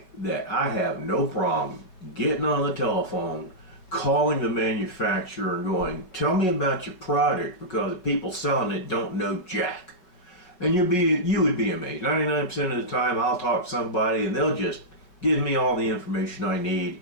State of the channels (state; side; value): late; right; 5.5 ms